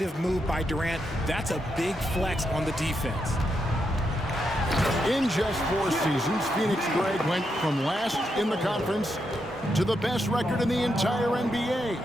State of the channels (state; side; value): normal; both; correlation 0.82